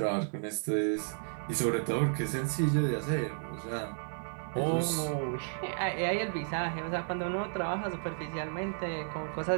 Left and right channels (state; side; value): silent; left; 56 dB below the other